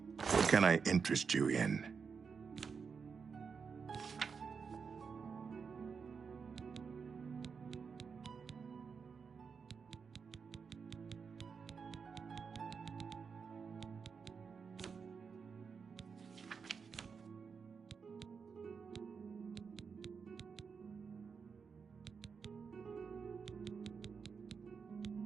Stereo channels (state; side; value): quieter; left; 5.7 dB